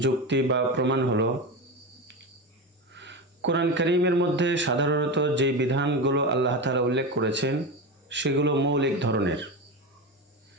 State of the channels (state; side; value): normal; both; correlation 0.20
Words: যুক্তি বা প্রমাণ হলো কোরআন কারীমের মধ্যে সাধারণত যে বিধানগুলো আল্লাহ তাআলা উল্লেখ করেছেন সেগুলো মৌলিক ধরনের।